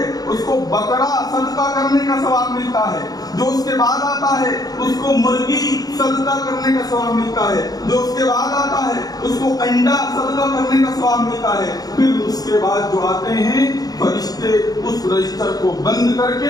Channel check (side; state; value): right; late; 0.18 ms